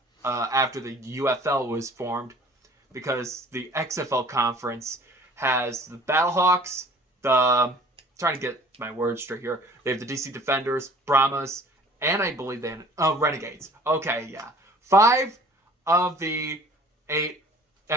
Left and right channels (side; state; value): both; normal; correlation 0.50